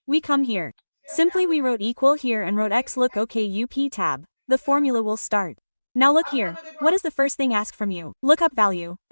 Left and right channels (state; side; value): inverted; both; correlation -1.00